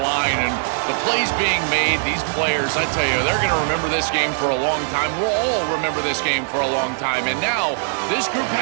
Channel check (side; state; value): left; silent; 57 dB below the other